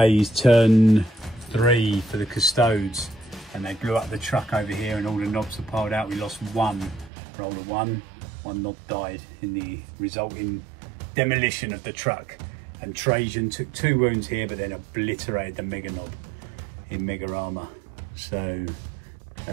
turn 3 for the Custodes. And they blew up the truck over here and all the knobs are piled out. We lost 1, roll of 1. 1 knob died in the resulting demolition of the truck. And Trajan took 2 wounds here, but then obliterated the mega knob in mega armor. So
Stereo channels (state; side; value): drops out; left; at 7.1 s